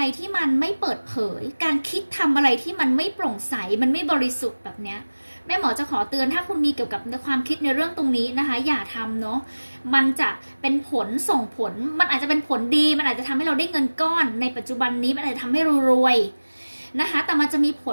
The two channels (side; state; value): both; inverted; correlation -1.00